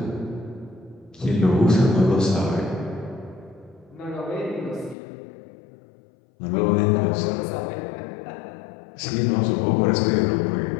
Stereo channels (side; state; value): right; drops out; at 5.0 s